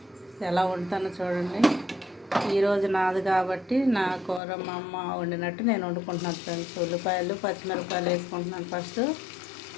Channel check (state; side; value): drops out; right; at 4.4 s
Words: ఎలా వండుతానో చూడండి. ఈరోజు నాది కాబట్టి నా కూర మా అమ్మ వండినట్టు నేను వండుకుంటున్నాను ఫ్రెండ్స్. ఉల్లిపాయలు పచ్చిమిరపకాయలు వేసుకుంటున్నాను. ఫస్ట్